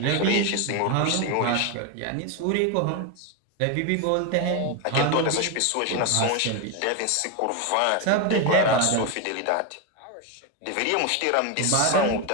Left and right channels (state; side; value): different; both; correlation 0.02